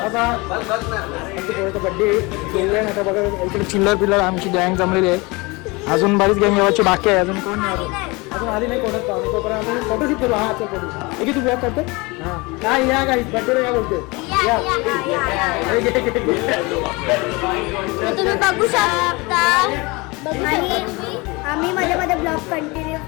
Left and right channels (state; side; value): quieter; right; 25.3 dB